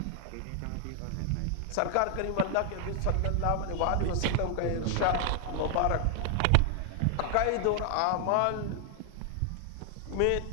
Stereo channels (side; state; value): both; different; correlation 0.00